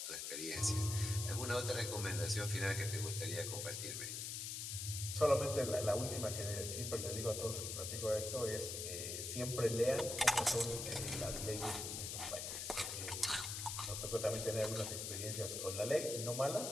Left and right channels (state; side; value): noise; left; hiss, 4 dB below the sound